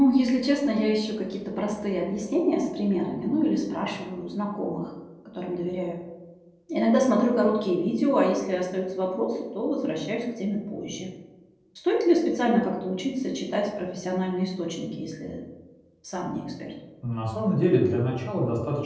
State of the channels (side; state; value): both; identical; correlation 1.00